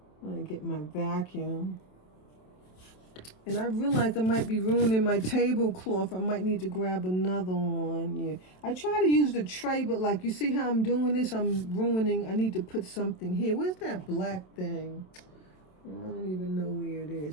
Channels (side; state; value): right; late; 27 ms